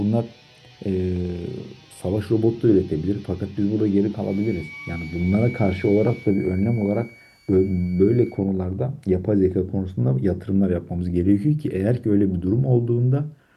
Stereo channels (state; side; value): identical; both; correlation 1.00